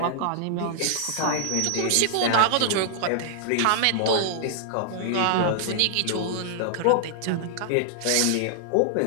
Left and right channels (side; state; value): both; different; correlation -0.01